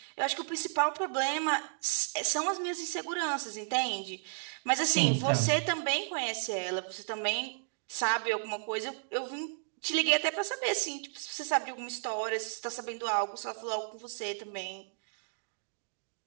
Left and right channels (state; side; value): silent; left; digital silence